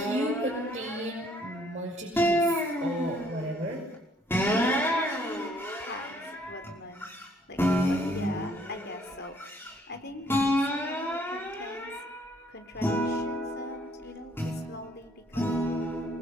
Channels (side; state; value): both; normal; correlation 0.64